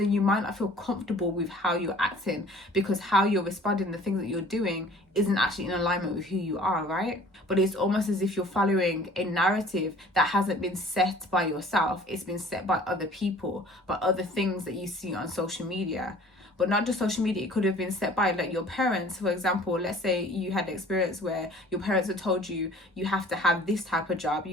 you might not feel comfortable with how you're acting, because how you're responding, the things that you're doing isn't actually in alignment with who you are, right? But it's almost as if you're following a narrative that hasn't been set by yourself. It's been set by other people, by other things that you see on social media. But not just social media, it could have been set by like your parents. For example, let's say you had an experience where your parents had told you, you have to have this type of job,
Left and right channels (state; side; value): normal; both; correlation 0.50